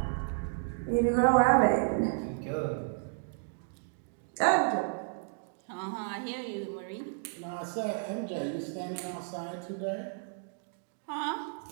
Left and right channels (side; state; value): left; silent; digital silence